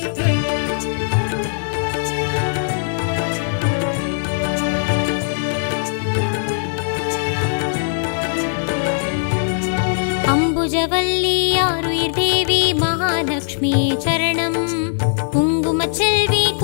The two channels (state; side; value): silent; right; 66 dB below the other